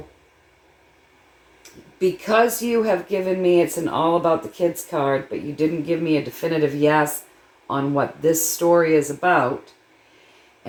because you have given me, it's an all about the kids card, but you didn't give me a definitive yes on what this story is about.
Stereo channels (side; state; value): both; identical; correlation 1.00